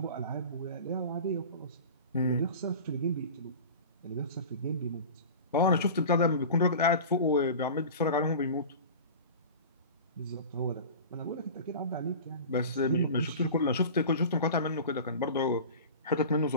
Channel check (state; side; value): inverted; both; correlation -0.35